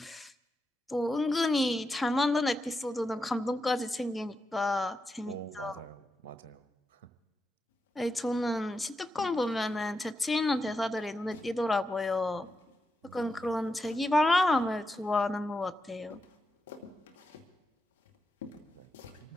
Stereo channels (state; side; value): normal; both; correlation 0.87